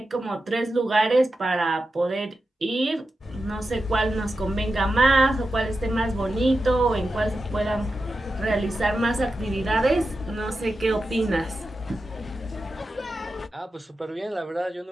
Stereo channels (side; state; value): both; normal; correlation 0.91